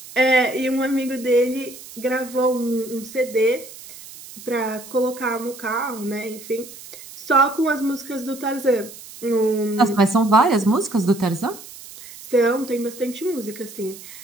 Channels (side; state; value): right; noise; hiss, 16 dB below the sound